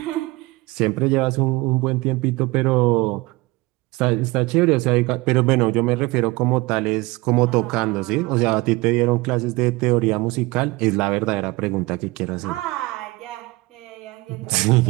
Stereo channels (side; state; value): left; quieter; 22.6 dB